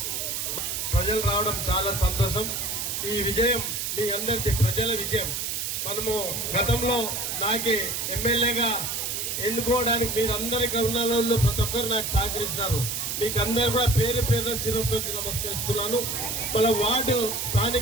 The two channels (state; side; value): noise; right; hiss, 2 dB below the sound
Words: ప్రజలు రావడం చాలా సంతోషం. ఈ విజయం మీ అందరికీ ప్రజల విజయం. మనము గతంలో నాకే ఎమ్మెల్యేగా ఎన్నుకోవడానికి మీరు అందరికీ ఉన్న వాళ్ళు ప్రతి ఒక్కరు నాకు సహకరిస్తున్నారు. మీకు అందరూ కూడా పేరు పేరున శిరస్సు వచ్చి నమస్కరిస్తున్నాను. మన వార్డు